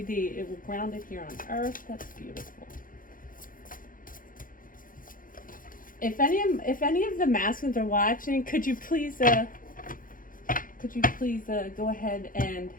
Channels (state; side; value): late; right; 0.40 ms